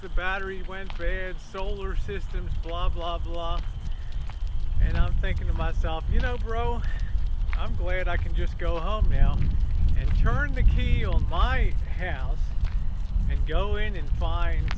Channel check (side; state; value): both; identical; correlation 1.00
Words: the battery went bad, solar systems, blah, blah, blah. And I'm thinking to myself, you know, bro, I'm glad I can just go home now and turn the key on my house and go in and find